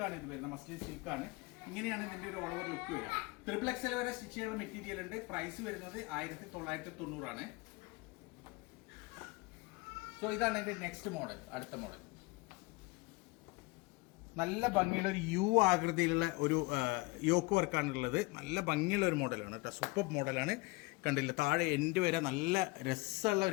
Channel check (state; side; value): quieter; right; 24.4 dB